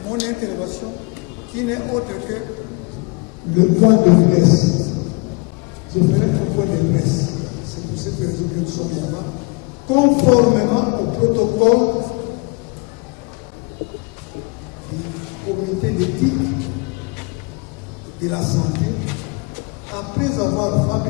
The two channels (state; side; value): quieter; right; 29.0 dB